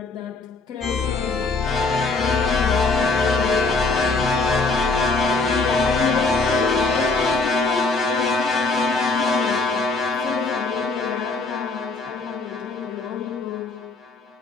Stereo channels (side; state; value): right; quieter; 3.7 dB